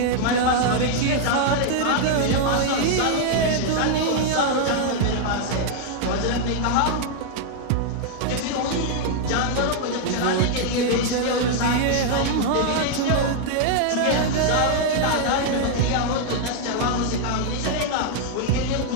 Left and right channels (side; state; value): both; different; correlation 0.00